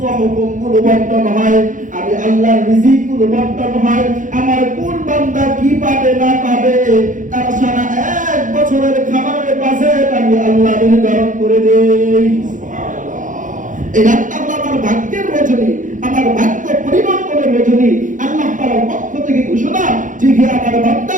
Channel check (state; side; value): late; left; 0.37 ms